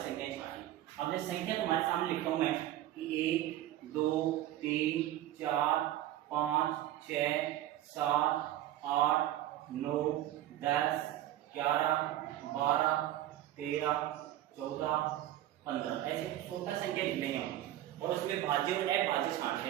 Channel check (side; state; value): left; quieter; 13.5 dB